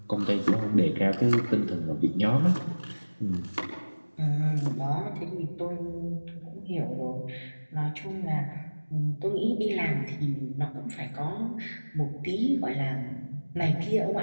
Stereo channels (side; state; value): both; inverted; correlation -1.00